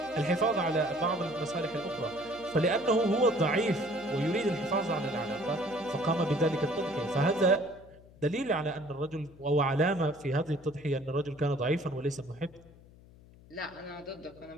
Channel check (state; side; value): noise; left; hum, 23 dB below the sound